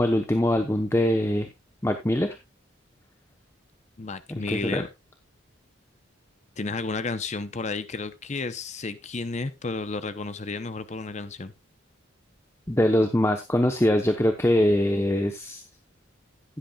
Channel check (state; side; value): normal; both; correlation 0.83